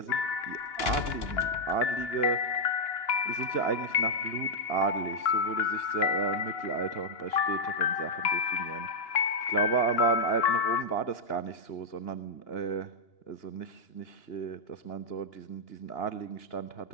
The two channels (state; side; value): late; right; 2.9 ms